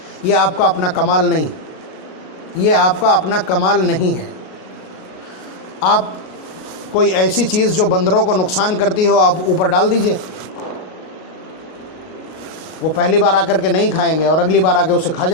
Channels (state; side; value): late; right; 38 ms